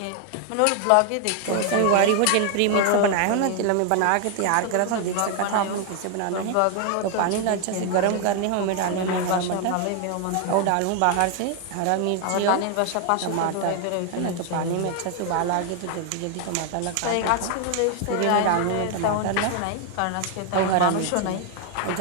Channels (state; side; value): different; both; correlation 0.00